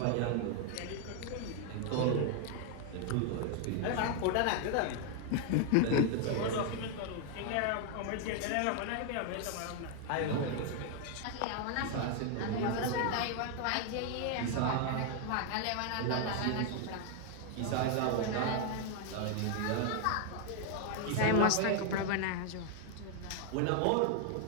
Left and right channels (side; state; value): both; different; correlation 0.00